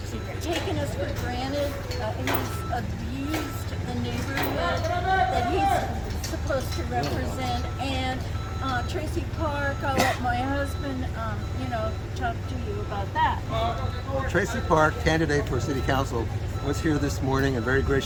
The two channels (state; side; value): identical; both; correlation 1.00